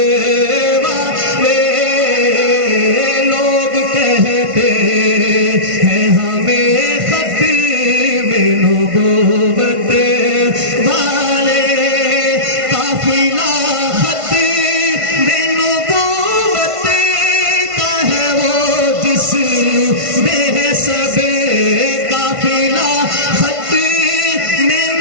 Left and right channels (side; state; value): left; late; 1.5 ms